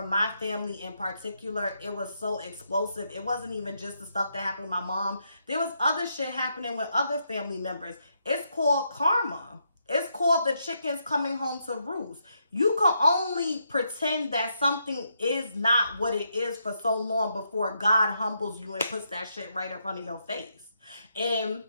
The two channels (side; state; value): both; inverted; correlation -0.80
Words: my family in particular, it was so explosive. It wasn't even just the stuff that happened with my mom. There was other shit happening with other family members. It's called karma. It's called the chickens coming home to roost. You can only pretend that something is not what it is for so long before God humbles you and puts that shit right in front of your face. And